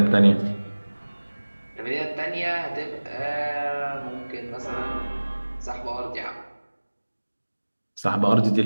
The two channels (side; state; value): both; inverted; correlation -1.00